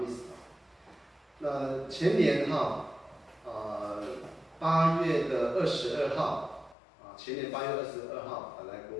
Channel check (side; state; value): right; drops out; at 6.8 s